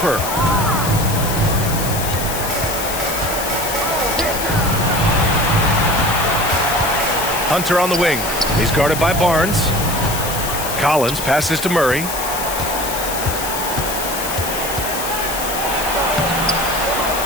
Hunter on the wing. He's guarded by Barnes. Collins passes to Murray.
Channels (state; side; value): noise; left; hiss, 6 dB below the sound